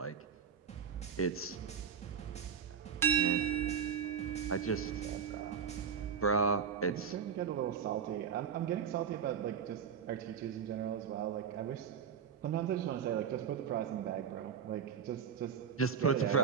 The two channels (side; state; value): left; quieter; 7.1 dB